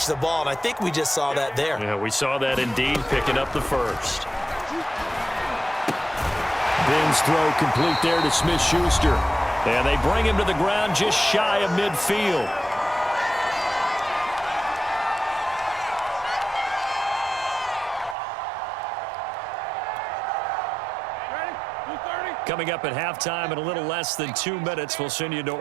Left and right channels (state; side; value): drops out; left; at 18.2 s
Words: the ball. And I think we just saw that there. Yeah, we saw that indeed, picking up the 1st. Ben's throw complete there to Smith-Schuster. And they bring him to the ground just shy of midfield. Coming up at halftime in a little less than 2 minutes, we'll send you to